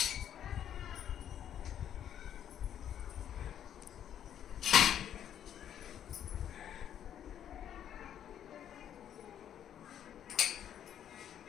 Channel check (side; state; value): right; quieter; 9.9 dB